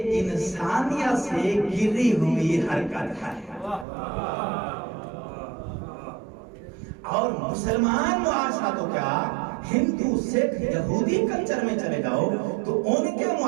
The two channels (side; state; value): left; drops out; at 3.9 s